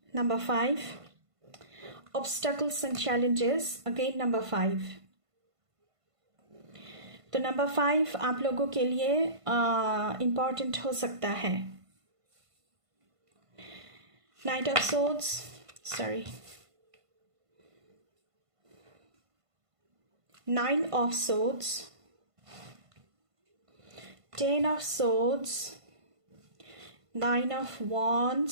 Number 5. Obstacles and challenges. Again number 5. तो नंबर 5 आप लोगों के लिए इम्पॉर्टेंट हो सकता है। Knight of Swords. Sorry. 9 of Swords. 10 of Swords. 9 of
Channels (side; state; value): left; late; 1.5 ms